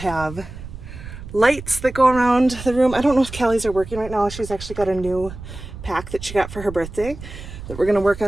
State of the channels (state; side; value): noise; right; rumble, 12 dB below the sound